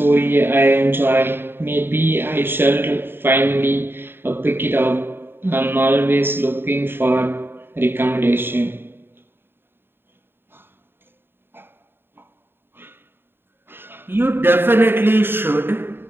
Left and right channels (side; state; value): left; late; 0.10 ms